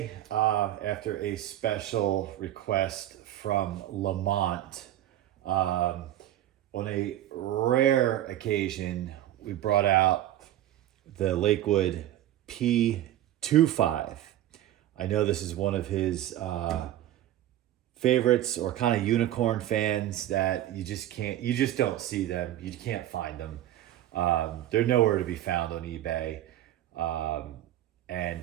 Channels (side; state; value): left; quieter; 13.0 dB